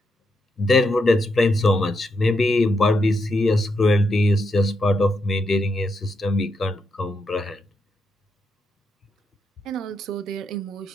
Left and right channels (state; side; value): normal; both; correlation 0.82